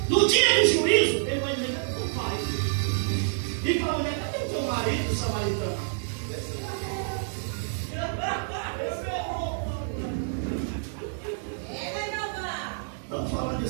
No dia do juízo, ele vai dizer: cadê o pai? E para a mulher: cadê o teu marido, samaritano? Estamos falando de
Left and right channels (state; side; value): silent; left; digital silence